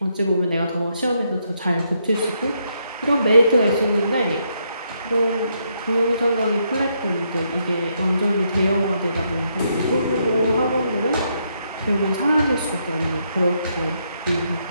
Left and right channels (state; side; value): inverted; both; correlation -0.76